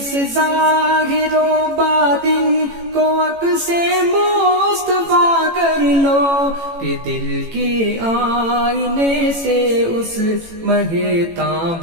ظاہر و باطن کو عکس مصطفیٰ کر لو، کہ دل کے آئینے سے اس مہے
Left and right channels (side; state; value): left; late; 18 ms